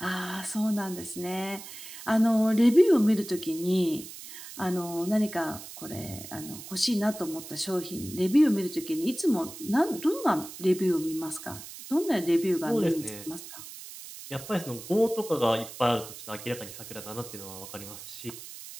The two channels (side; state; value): right; noise; hiss, 13 dB below the sound